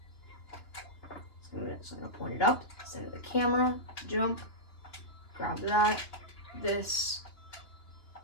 So I'm going to point it up, center the camera, jump, grab that, this.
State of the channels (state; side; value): late; right; 2.9 ms